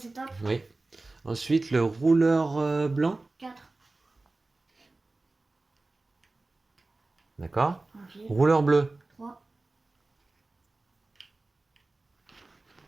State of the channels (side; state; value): left; quieter; 3.2 dB